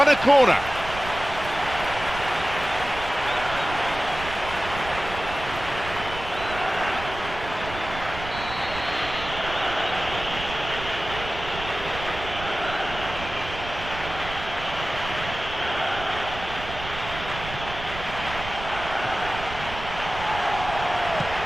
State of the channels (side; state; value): right; noise; rumble, 10 dB below the sound